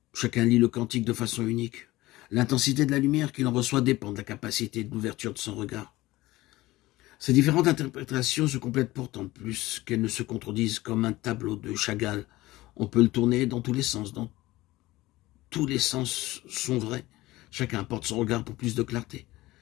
Chacun lit le cantique de façon unique. L'intensité de la lumière qu'il en reçoit dépend de la capacité de l'ouverture de son regard. Ces différentes interprétations se complètent pourtant plus qu'elles ne se contredisent, comme un tableau de Chagall. On peut le tourner dans tous les sens, tous les sens sont vrais. Chacun apporte son regard pour plus de clarté.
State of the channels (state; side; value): quieter; right; 18.3 dB